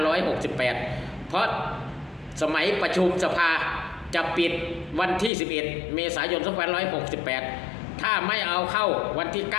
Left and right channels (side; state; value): right; drops out; at 5.3 s